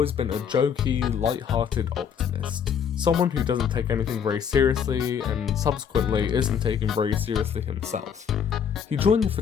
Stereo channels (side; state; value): right; quieter; 7.6 dB